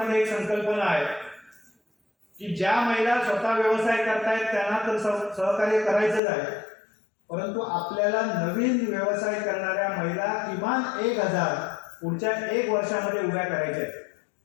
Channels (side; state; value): right; drops out; at 6.2 s